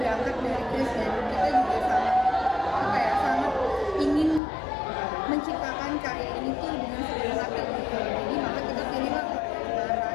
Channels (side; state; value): right; drops out; at 4.4 s